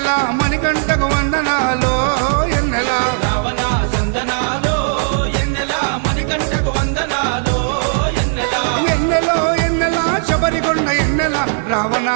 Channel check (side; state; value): left; silent; digital silence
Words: మణికంఠకు వందనాలో ఎన్నెల రావణ సందనాలో ఎన్నెల మణికంఠకు వందనాలో ఎన్నెల ఎన్నెలో ఎన్నెల శబరికొండ ఎన్నెల రావణ